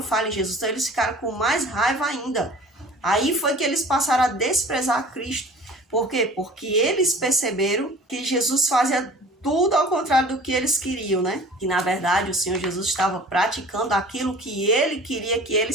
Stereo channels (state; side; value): normal; both; correlation 0.45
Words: falha em Jesus, então eles ficaram com mais raiva ainda. Aí foi que eles passaram a desprezar Cristo. Por quê? Porque eles perceberam que Jesus fazia tudo ao contrário do que eles queriam, né? Que na verdade o Senhor Jesus estava praticando aquilo que Ele queria que